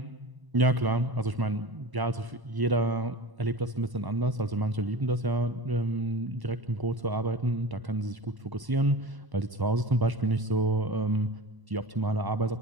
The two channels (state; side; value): late; left; 1.0 ms